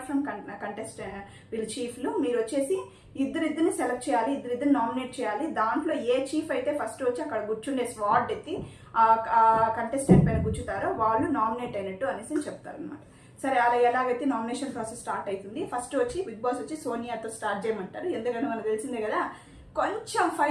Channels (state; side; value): identical; both; correlation 1.00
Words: ఫ్రమ్ కంటెస్టెంట్ వీళ్ళు చీఫ్లు మీరు వచ్చేసి ఇద్దరిని సెలెక్ట్ చేయాలి, ఇద్దరిని నామినేట్ చేయాలి. దాంట్లో ఏ చీఫ్ అయితే ఫస్ట్ వచ్చి అక్కడ కూర్చుండే స్వాట్ ఎత్తి ఆ కంటెస్టెంట్ పైన కూర్చుతారో వాళ్ళు నామినేట్ అయినట్టు అనేసి చెప్తారు అనమాట. సరే అలా ఎలాగైతే నామినేషన్ ప్రాసెస్ స్టార్ట్ అవుతుంది. ఫస్ట్ వచ్చి బిగ్ బాస్ వచ్చి సోనియాతో స్టార్ట్ చేయమంటారు. ఎందుకంటే మనకు తెలిసిందే కదా, కొంచెం